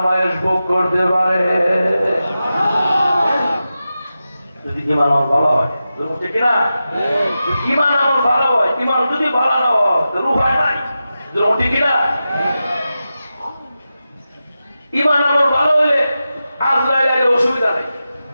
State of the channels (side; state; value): both; inverted; correlation -0.92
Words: ভোগ করতে পারে। যদি ঈমান আমার ভালো হয়, ঠিক না? ঈমান আমার ভালো হয়, ঈমান যদি ভালো না হয় তো রূহ হয় নাই, ঠিক না? ঈমান আমার ভালো হলে আজরাইলের অসুবিধা নাই,